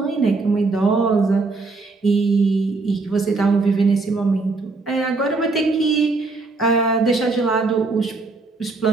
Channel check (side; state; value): left; quieter; 3.7 dB